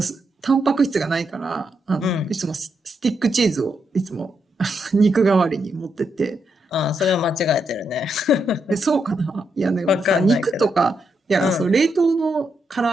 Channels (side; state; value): both; normal; correlation 0.81